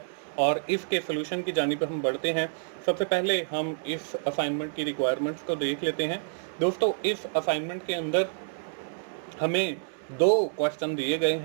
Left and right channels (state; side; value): silent; left; 59 dB below the other